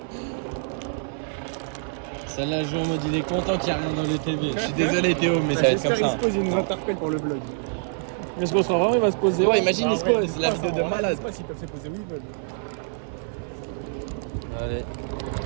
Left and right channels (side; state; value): left; silent; digital silence